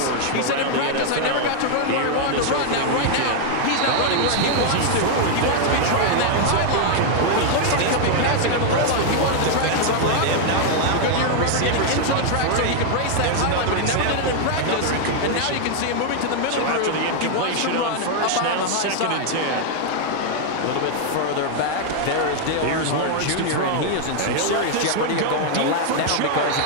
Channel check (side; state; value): both; different; correlation 0.00